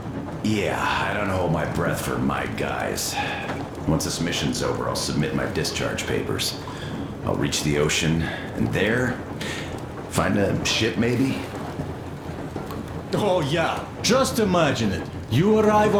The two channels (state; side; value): identical; both; correlation 1.00